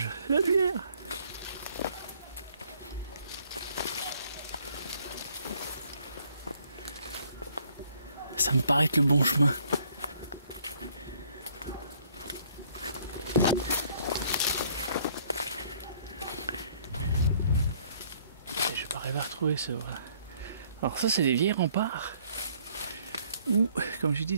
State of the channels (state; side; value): inverted; both; correlation -0.63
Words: la lumière. Ça me paraît être le bon chemin. Et je vais pas arriver à retrouver ce... Voilà. Alors ça c'est des vieilles remparts. Ou, comme je dis,